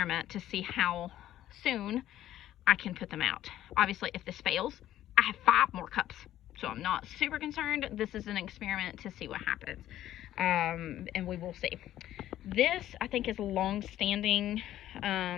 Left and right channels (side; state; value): right; quieter; 12.9 dB